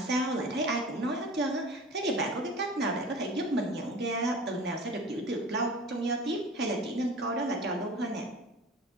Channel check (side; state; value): both; normal; correlation 0.39